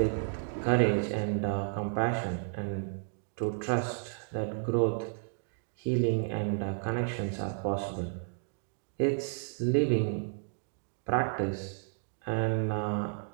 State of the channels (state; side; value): silent; left; digital silence